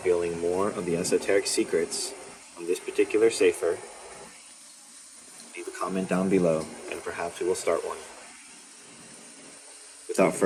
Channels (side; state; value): both; identical; correlation 1.00